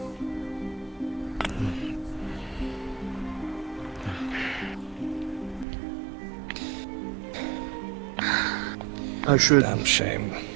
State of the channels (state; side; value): drops out; left; at 5.7 s